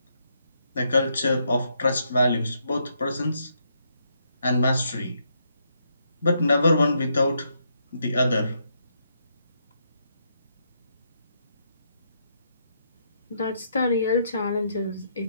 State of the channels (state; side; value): inverted; both; correlation -0.77